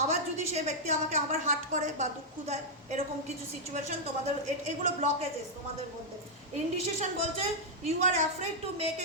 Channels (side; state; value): both; normal; correlation -0.05